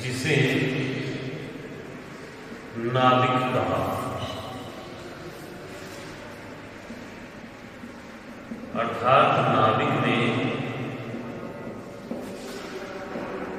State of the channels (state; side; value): identical; both; correlation 1.00